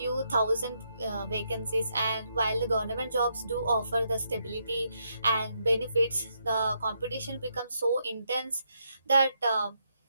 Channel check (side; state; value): both; inverted; correlation -0.78